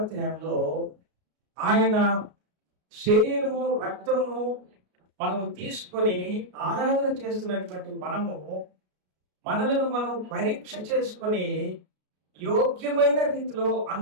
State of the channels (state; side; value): late; left; 33 ms